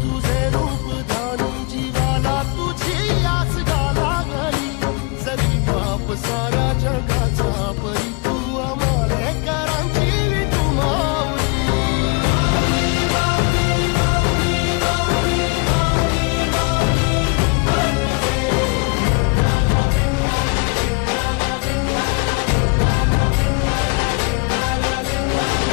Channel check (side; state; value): right; quieter; 30.2 dB